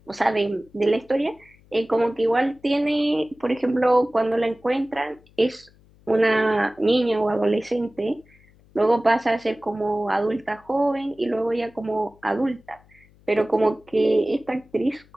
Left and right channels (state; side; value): noise; left; hum, 29 dB below the sound